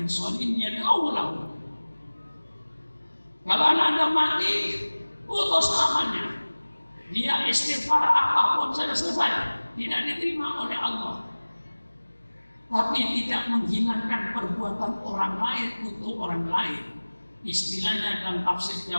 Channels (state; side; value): inverted; both; correlation -1.00